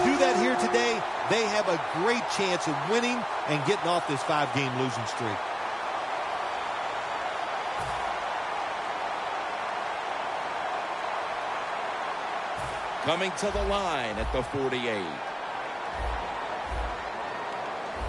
do that here today, they have a great chance of winning and getting off this 5-game losing streak. Coming to the line at the 48.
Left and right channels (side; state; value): both; identical; correlation 1.00